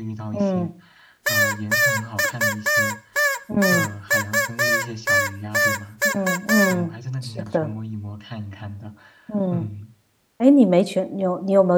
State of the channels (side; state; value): both; identical; correlation 1.00